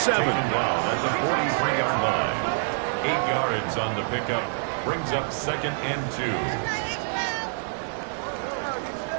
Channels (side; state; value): left; silent; 61 dB below the other